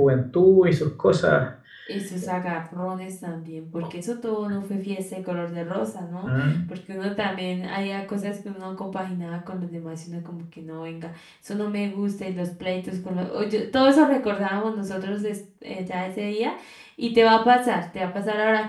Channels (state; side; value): identical; both; correlation 1.00